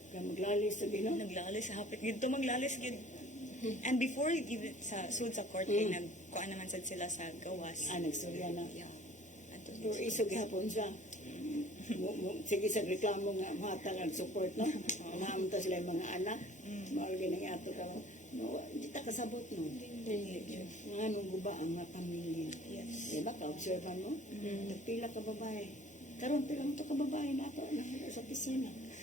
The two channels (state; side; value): normal; both; correlation 0.50